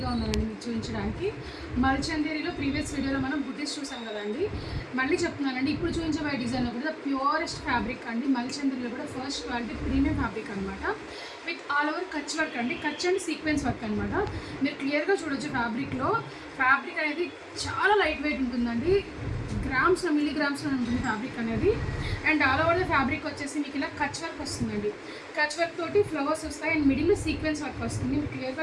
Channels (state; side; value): identical; both; correlation 1.00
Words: ఉన్నానండి మీకు చూపించడానికి. మల్చందేరిలో ప్రీవియస్ వీడియోలో మనం బుటీస్ చూసాం కదండి. మళ్ళీ చెప్తున్నానండి, ఇప్పుడు చూపించబోయే డిజైన్ కూడా ప్యూరెస్ట్ ఫ్యాబ్రిక్ అండి. మల్చందేరిలో కూడా ఫస్ట్ క్వాలిటీ ప్రీమియం ఫ్యాబ్రిక్ అనమాట. With all over Kutch work అండి. కచ్ అండ్ సీక్వెన్స్ వర్క్ అనమాట. మీరు క్లియర్గా చూడొచ్చు ఫ్యాబ్రిక్లో. ఫ్యాబ్రిక్ అనేది చాలా లైట్ వెయిట్ ఉంటుందండి. గ్రామ్స్లో మిల్లీగ్రామ్స్లో ఉంటుంది ఫ్యాబ్రిక్ అనేది. And all over the fabric వచ్చేసి మీకు ఇలా కచ్ వర్క్ వస్తుందండి. కచ్ వర్క్ తోటి ఫ్లవర్స్ వస్తాయి అండ్ మిడిల్లో సీక్వెన్స్ వర్క్ వస్తుంది. మీరు క్లియర్గా